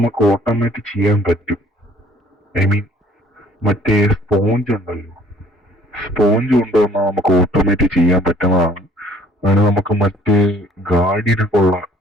ഓട്ടോമാറ്റിക് ചെയ്യാൻ പറ്റും. ഐ മീൻ മറ്റേ സ്പോഞ്ച് ഉണ്ടല്ലോ, സ്പോഞ്ച് കൊണ്ടുവന്നാൽ നമുക്ക് ഓട്ടോമാറ്റിക് ചെയ്യാൻ പറ്റുന്നതാണ്. അതിന് നമുക്ക് മറ്റേ ഗാർഡിയനൊക്കെ ഉള്ള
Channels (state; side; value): normal; both; correlation 0.57